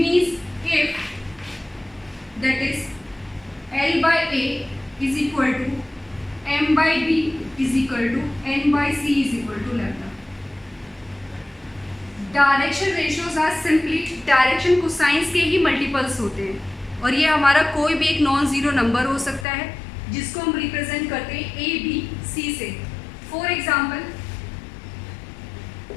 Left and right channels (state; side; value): drops out; right; at 19.5 s